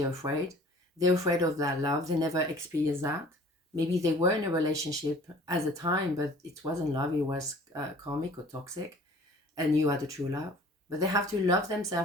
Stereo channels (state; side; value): normal; both; correlation 0.49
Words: afraid. They're afraid of that love. They never experience that. Maybe they were in a relationship at the time, but it wasn't love. It was karmic or toxic, and you are the true love. But they have to love